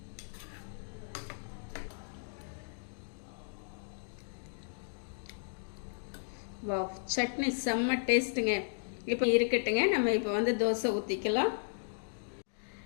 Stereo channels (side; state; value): right; silent; digital silence